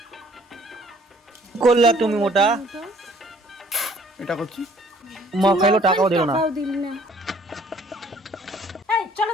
করলা তুমি মোটা। এটা করছি উম্মা খাইলো টাকাও দিল না। টাকাও দিলি না। এই চলো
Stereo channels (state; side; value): normal; both; correlation 0.58